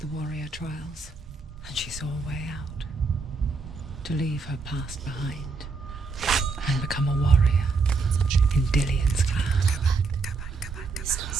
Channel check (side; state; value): left; quieter; 4.3 dB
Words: warrior trials, and she saw a way out. To leave her past behind and become a warrior in Dillian's clan. It's not